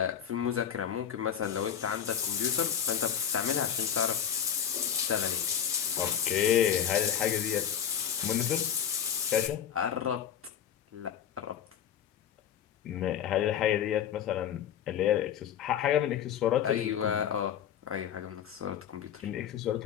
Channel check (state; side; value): quieter; right; 9.0 dB